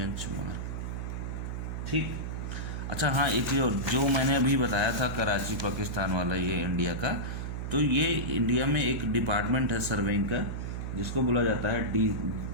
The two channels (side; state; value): right; noise; hum, 4 dB below the sound